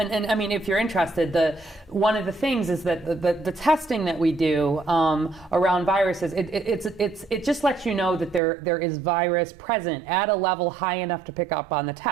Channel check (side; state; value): left; drops out; at 8.4 s